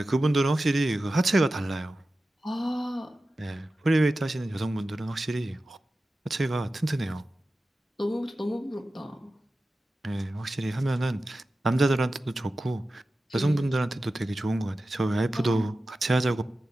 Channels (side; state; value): both; normal; correlation 0.94